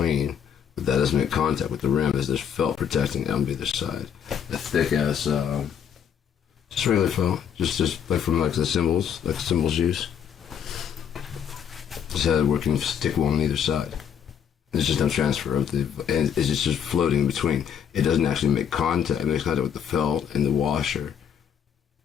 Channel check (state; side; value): quieter; right; 8.3 dB